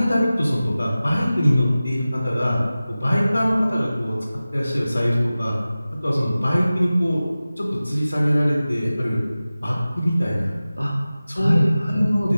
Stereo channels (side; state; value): both; inverted; correlation -0.96